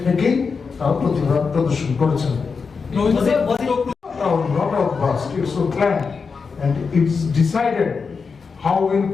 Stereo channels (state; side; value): quieter; right; 5.2 dB